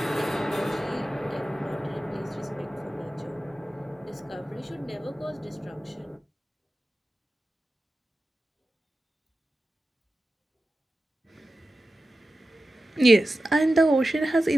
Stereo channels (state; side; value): normal; both; correlation 0.93